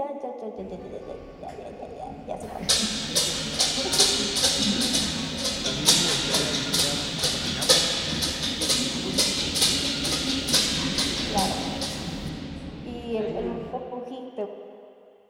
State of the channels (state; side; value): identical; both; correlation 1.00